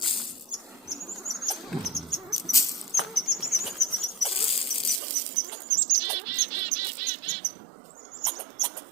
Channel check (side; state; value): left; drops out; at 5.0 s